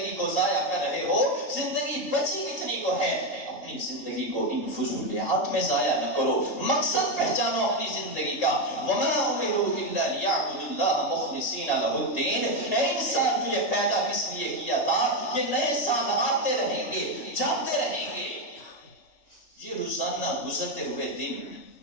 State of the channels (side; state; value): right; late; 2.9 ms